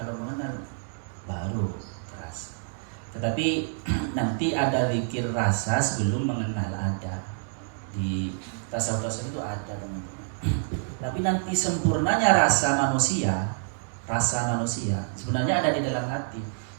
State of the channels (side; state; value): left; silent; 60 dB below the other